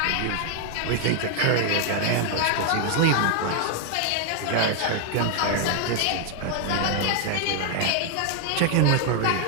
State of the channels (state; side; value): different; both; correlation 0.00